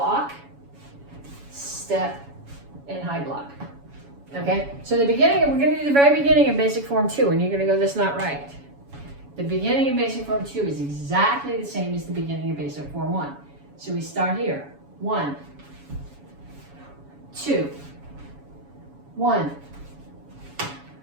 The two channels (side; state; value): left; late; 7.1 ms